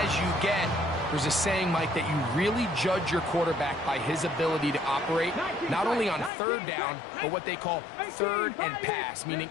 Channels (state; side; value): drops out; right; at 6.3 s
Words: as you get. There's a saying, Mike, that you really judge your quarterback by his ability to operate, not only on third down, but what they call third and pass, meaning